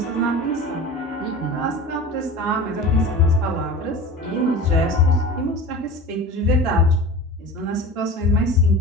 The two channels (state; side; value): normal; both; correlation 0.35